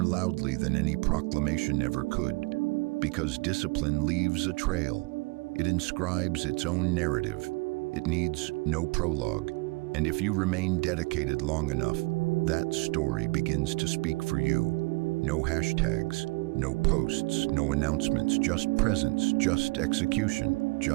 loudly than any proclamation ever could. Because discipline leaves a trail. It inscribes its own narrative. It needs no prologue. And if you remain dedicated long enough, that story begins to speak for you. No hashtags, no posts, no announcements, just presence, just execution,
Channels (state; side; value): quieter; left; 26.9 dB